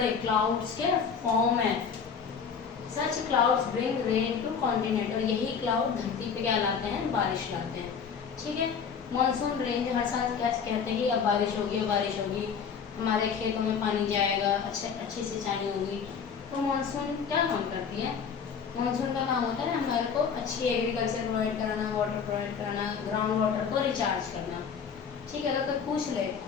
क्लाउड्स के फॉर्म है। Such clouds bring rain to continent, और यही क्लाउड धरती पे क्या लाते हैं, बारिश लाते हैं, ठीक है। मानसून रेन हर साल क्या कहते हैं कि अब बारिश होगी, अब बारिश होगी, हमारे खेतों में पानी जाएगा, अच्छी सिंचाई होगी। तो मानसून क्या काम करती है? मानसून का काम होता है ना हमारे को अच्छी एग्रीकल्चर प्रोवाइड कराना, वाटर प्रोवाइड कराना, ग्राउंड वाटर को रिचार्ज करना, ठीक है। अगर कोई पूछ ले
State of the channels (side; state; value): right; quieter; 6.5 dB